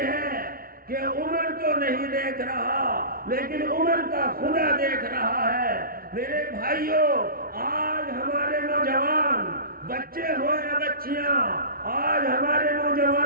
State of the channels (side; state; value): left; late; 0.43 ms